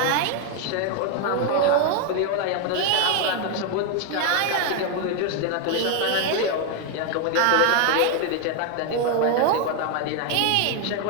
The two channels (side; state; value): both; different; correlation 0.01